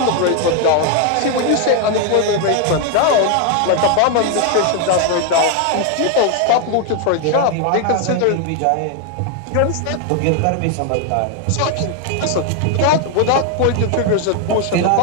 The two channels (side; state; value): both; different; correlation 0.01